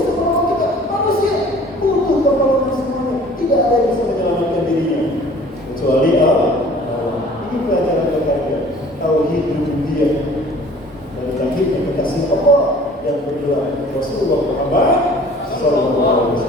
menolong kita. Manusia butuh pertolongan semuanya. Tidak ada yang bisa menyelamatkan dirinya kecuali Allah. Ini pelajaran berharga. Tauhid rububiyah dan tauhid kekasih Allah yang bergerak Rasulullah Muhammad sallallahu alaihi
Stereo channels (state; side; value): normal; both; correlation 0.49